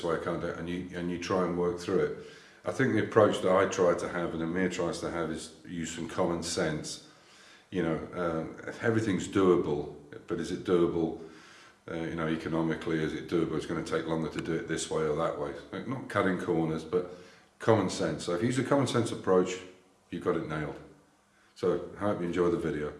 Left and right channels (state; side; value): identical; both; correlation 1.00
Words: way, I can't do it, and you try and work through it. I think the approach that I try to have and Amir tries to have is use some common sense. Everything's doable, but is it doable, economically? Is it doable? It's going to take longer to do it this way or that way. Not cutting corners, but common sense. So if you use a common sense approach, you've got it nailed. So I hope you enjoy the video.